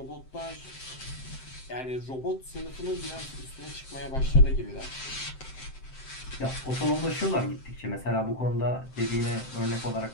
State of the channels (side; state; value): right; late; 7.7 ms